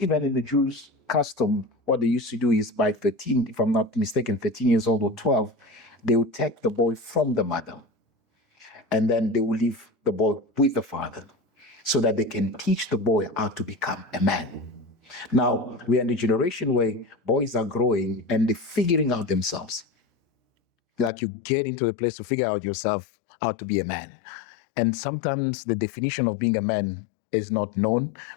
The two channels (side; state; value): right; drops out; at 21.1 s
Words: even in the Jews' custom, what they used to do is by 13, if I'm not mistaken, 13 years old or 12, they would take the boy from the mother and then they will leave the boy with the father so that they can teach the boy how to become a man. Now, we are in a generation where boys are growing and they're figuring out themselves. Like you get into a place to figure out yourself how to be a man. And sometimes the definition of being a man is not known